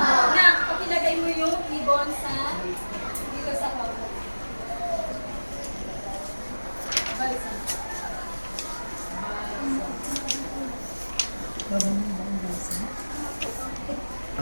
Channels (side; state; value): both; inverted; correlation -1.00